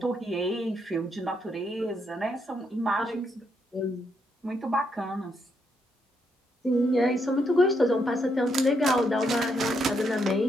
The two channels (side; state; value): both; normal; correlation 0.77